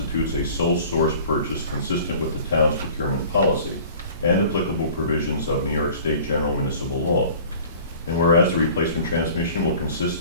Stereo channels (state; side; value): inverted; both; correlation -0.46